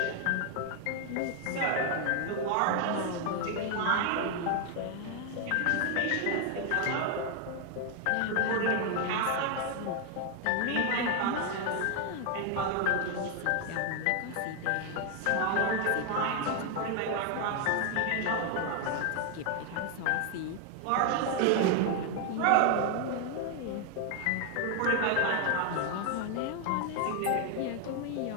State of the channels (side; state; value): both; different; correlation 0.00